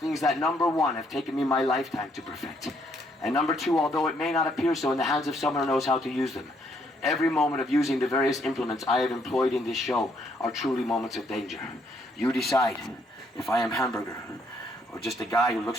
that, number 1, have taken me my lifetime to perfect. And number 2, although it may not appear so in the hands of someone who knows how to use them, every moment of using the various implements I have employed in this show are truly moments of danger. You decide if I am hamburger or just a guy who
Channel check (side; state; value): both; normal; correlation 0.70